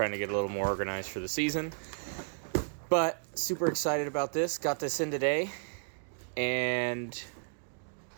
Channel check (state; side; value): silent; left; 56 dB below the other